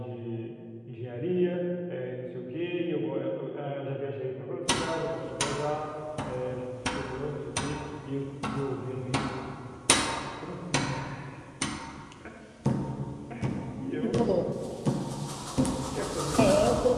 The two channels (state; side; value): identical; both; correlation 1.00